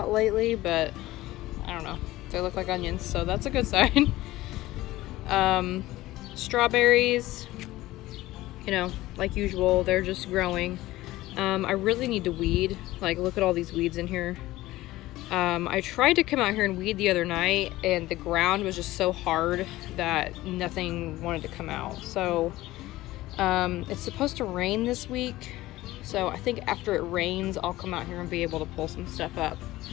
lately, but I don't know. They look like onions, so that's a good sign. Strawberries, you know, like usual, they're just growing. I really need to weed. Like, look at all these weeds in here. I tried to come out here and weed the other night, and the ground was just so hard that nothing wanted to come out. So it's supposed to rain this week, so I think after it rains I'll come out here and be able to pull some stuff up.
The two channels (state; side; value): quieter; right; 17.2 dB